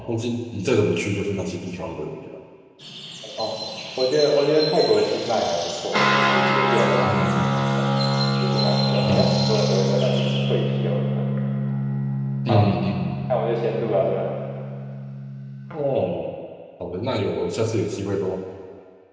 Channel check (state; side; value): identical; both; correlation 1.00